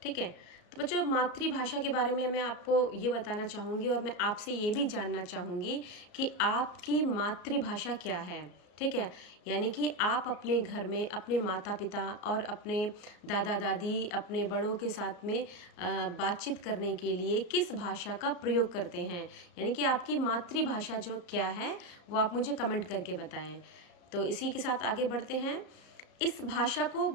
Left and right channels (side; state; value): right; late; 34 ms